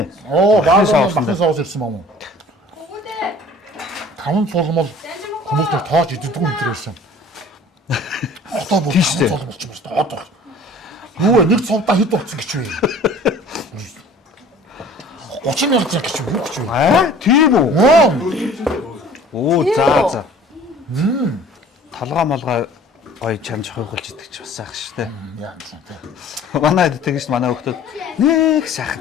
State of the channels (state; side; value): normal; both; correlation 0.48